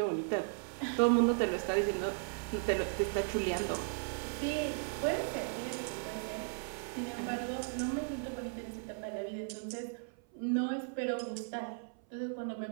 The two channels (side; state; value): left; silent; 54 dB below the other